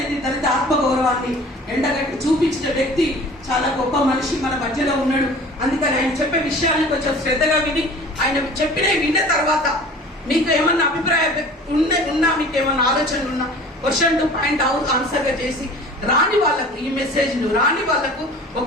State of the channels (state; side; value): normal; both; correlation 0.44